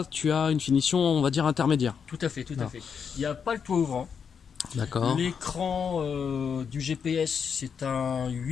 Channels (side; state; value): right; quieter; 6.8 dB